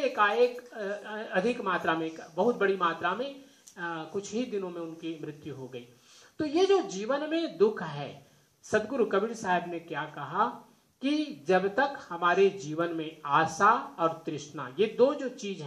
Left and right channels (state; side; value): identical; both; correlation 1.00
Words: एकाएक अधिक मात्रा में, बहुत बड़ी मात्रा में कुछ ही दिनों में उनकी मृत्यु हो गई। तो ये जो जीवन में दुख है, सदगुरु कबीर साहब ने क्या कहा कि जब तक हमारे जीवन में आशा और तृष्णा, ये दो जो चीज